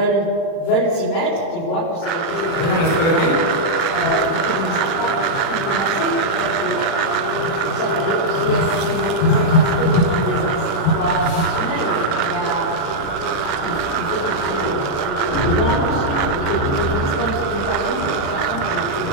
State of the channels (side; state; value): right; late; 35 ms